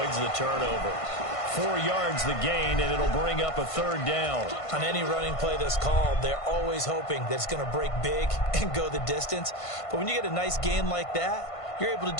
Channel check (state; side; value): late; right; 1.5 ms